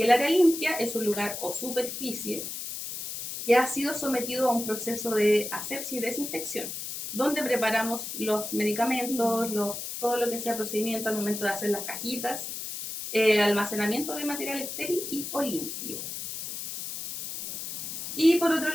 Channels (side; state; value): left; noise; hiss, 6 dB below the sound